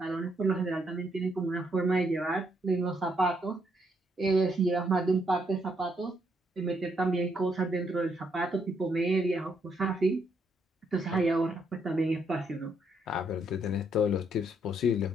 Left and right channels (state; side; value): normal; both; correlation 0.74